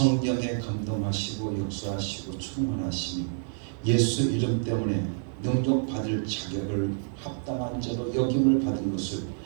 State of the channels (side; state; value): left; silent; digital silence